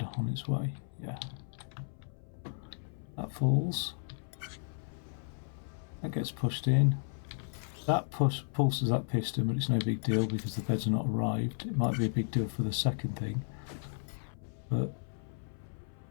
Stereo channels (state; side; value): silent; right; 55 dB below the other